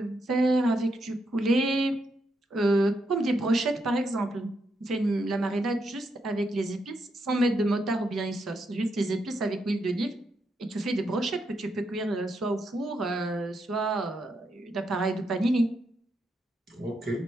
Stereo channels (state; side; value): normal; both; correlation 0.81